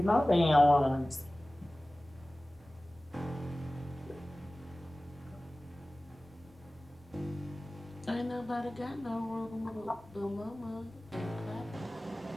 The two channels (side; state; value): both; normal; correlation 0.97